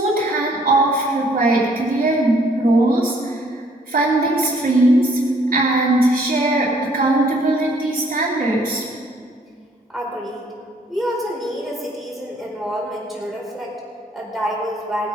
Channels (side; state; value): both; normal; correlation 0.62